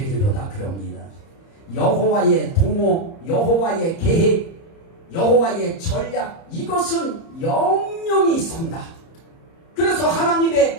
그럽니다. 여호와의 도모, 여호와의 계획, 여호와의 전략, 이것은 영영이 선다. 그래서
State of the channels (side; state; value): right; late; 30 ms